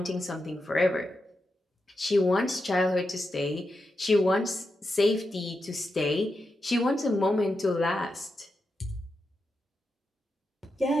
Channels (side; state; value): both; normal; correlation 0.88